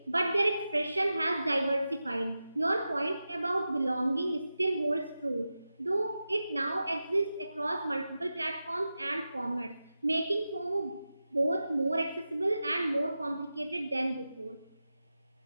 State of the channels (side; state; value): both; inverted; correlation -0.92